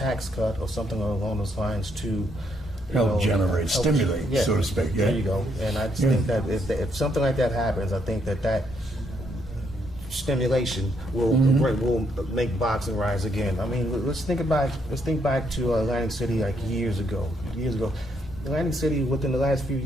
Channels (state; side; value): normal; both; correlation 0.74